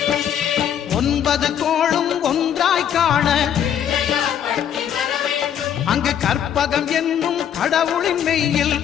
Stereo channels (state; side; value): quieter; right; 9.3 dB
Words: ஒன்பது கோளும் ஒன்றாய் காண அங்கு கற்பகம் என்னும் கடவுளின் மெய்யில்